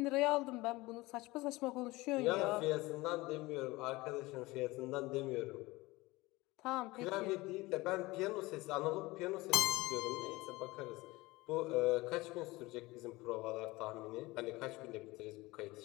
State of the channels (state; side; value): quieter; right; 21.1 dB